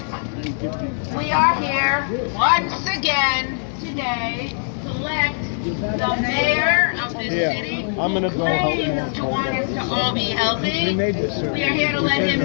We are here once again today to elect the mayor of this city. I'm gonna go claims to want us to all be healthy. We are here to let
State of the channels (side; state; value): right; silent; 60 dB below the other